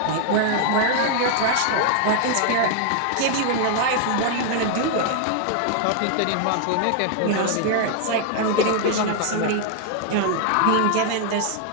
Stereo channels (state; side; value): different; both; correlation 0.00